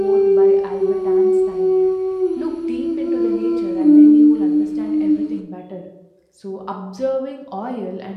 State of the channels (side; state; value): both; identical; correlation 1.00